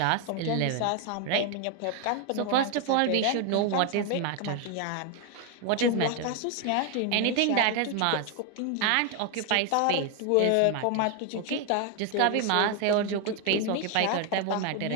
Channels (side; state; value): both; different; correlation 0.01